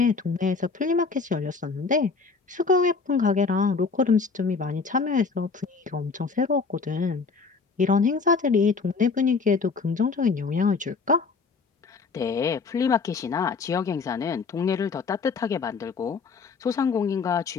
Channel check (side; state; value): right; quieter; 4.7 dB